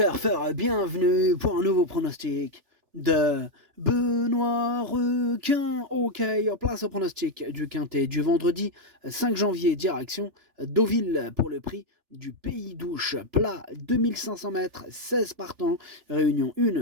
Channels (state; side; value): late; left; 3.4 ms